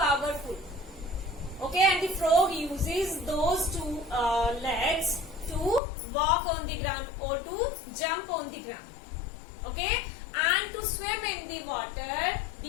Okay, and the frog uses those 2 legs to walk on the ground or to jump on the ground. Okay, and to swim in the water,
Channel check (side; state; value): right; drops out; at 5.8 s